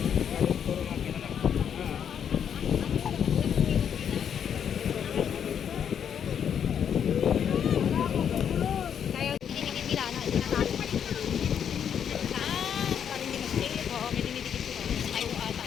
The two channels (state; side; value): quieter; right; 8.3 dB